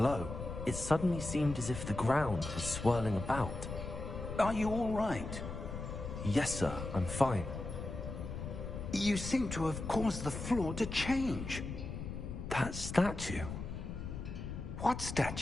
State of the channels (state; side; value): noise; left; rumble, 7 dB below the sound